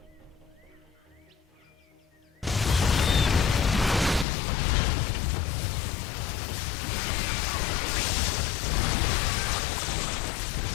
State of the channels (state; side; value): drops out; right; at 4.2 s